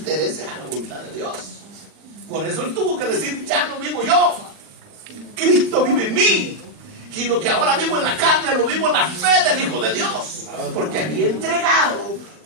a la voluntad de Dios. Por eso él tuvo que decir: ya no vivo yo, Cristo vive en mí, y lo que ahora vivo en la carne lo vivo en la fe del Hijo de Dios, porque había entregado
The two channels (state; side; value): late; left; 39 ms